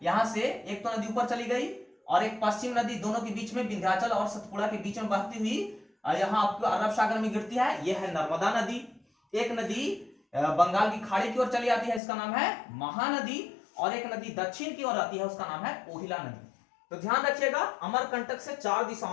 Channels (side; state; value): right; drops out; at 12.0 s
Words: यहां से एक तो नदी ऊपर चली गई और एक पश्चिम नदी, दोनों के बीच में विंध्याचल और सतपुड़ा के बीच में बहती हुई यहां आपको अरब सागर में गिरती है, यह है नर्मदा नदी। एक नदी बंगाल की खाड़ी की ओर चली आती है, इसका नाम है महानदी। और एक नदी दक्षिण की ओर आती है, उसका नाम है कोहिला नदी। तो ध्यान रखिएगा, अमरकंटक से 4